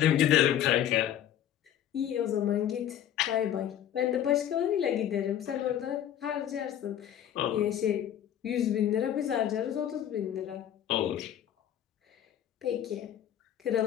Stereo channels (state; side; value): quieter; right; 10.6 dB